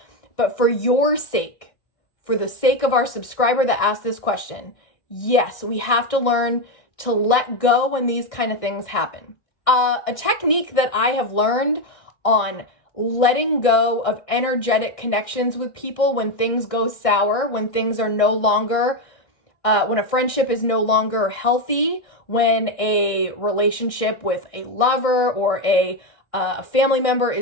But for your sake, for the sake of our subscriber that asked this question, yes, we have to learn to let go when these kind of things happen. A technique that I have learned on letting go of energetic connections with people when things go sour, when things are no longer, when a friendship is no longer healthy, when a relationship with a lover or a family member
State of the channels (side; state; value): right; late; 1.6 ms